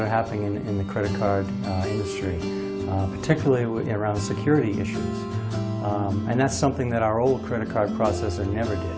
are happening in the credit card industry, particularly around security issues. And that's something that our old credit card processor never did.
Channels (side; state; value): both; identical; correlation 1.00